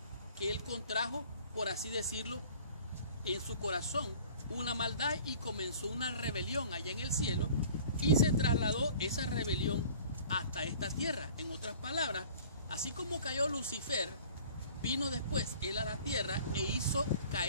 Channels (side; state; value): both; inverted; correlation -0.47